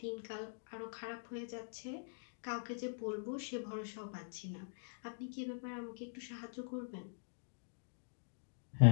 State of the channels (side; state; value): right; silent; digital silence